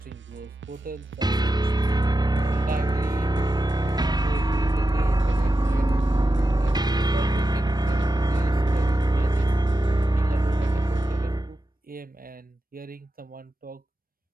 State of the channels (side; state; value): both; normal; correlation 0.90